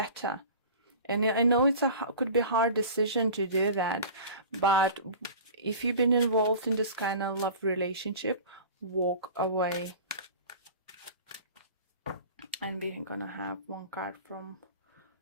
And I know could be a hard decision to do that, but if you've been involved in this kind of love relationship, walk away. And we're gonna have one card from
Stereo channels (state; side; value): inverted; both; correlation -0.38